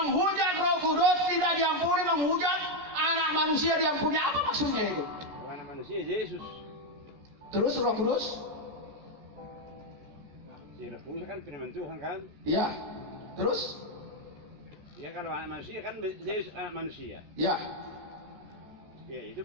Roh Kudus tidak diampuni, menghujat anak manusia diampuni. Apa maksudnya itu? Anak manusia Yesus. Terus Roh Kudus? Roh Kudus kan firman Tuhan kan? Ya. Terus? Ya kalau anak manusia kan Yesus anak manusia. Ya. Ya itu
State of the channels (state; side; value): late; left; 14 ms